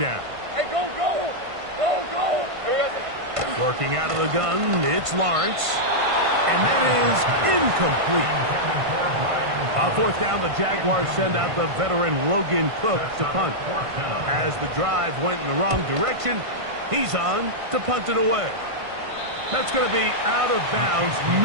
Hey, go, go! Go, go! Working out of the gun, it's Lawrence. And that is incomplete. On fourth down, the Jaguars send out the veteran Logan Cook to punt. As the drive went in the wrong direction, he's on to punt it away. That's going to be out of bounds,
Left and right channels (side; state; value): left; late; 1.5 ms